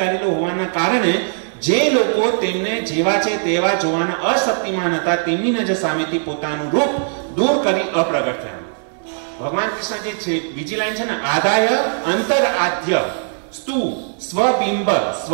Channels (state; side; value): silent; left; 66 dB below the other